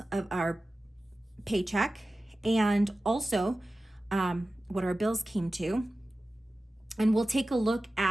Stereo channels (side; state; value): both; normal; correlation 0.95